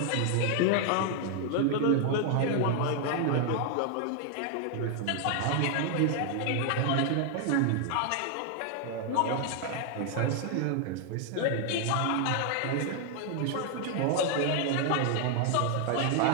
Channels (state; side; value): different; both; correlation 0.00